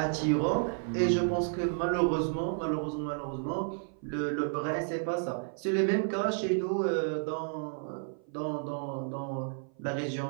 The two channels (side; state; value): left; silent; 55 dB below the other